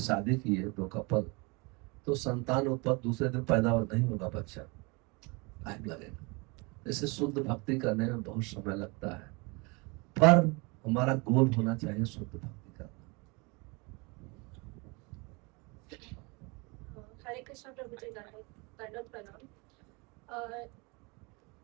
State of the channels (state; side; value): quieter; left; 28.6 dB